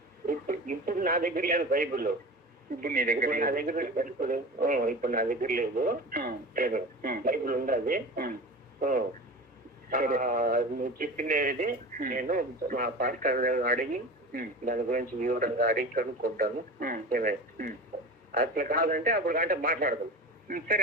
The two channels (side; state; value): both; normal; correlation 0.32